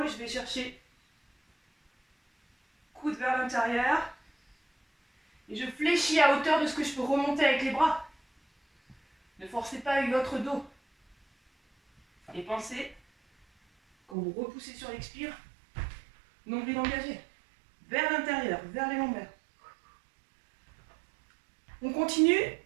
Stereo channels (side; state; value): left; drops out; at 14.2 s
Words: je vais chercher coude vers l'intérieur. Et je fléchis à hauteur de ce que je peux remonter avec les bras. Ne forcez pas avec votre dos. Et pensez, quand vous repoussez sur l'expire, nombril engagé, vers l'intérieur, vers les lombaires. On continue,